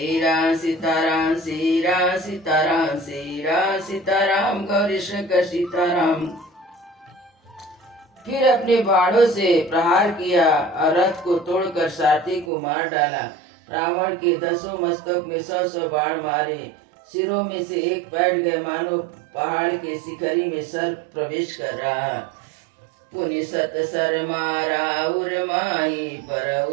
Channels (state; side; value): drops out; left; at 12.5 s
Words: राम सीताराम श्री राम सीताराम श्री राम सीताराम गौरी शंकर सीताराम। फिर अपने बाणों से प्रहार किया और रथ को तोड़कर सारथी को मार डाला। रावण के 10 मस्तक में 100 बाण मारे। सिरों में से एक बैठ गए, मानो पहाड़ के शिखरी में सर्प प्रवेश कर रहा। पुनि सत सर मारा उर माही पर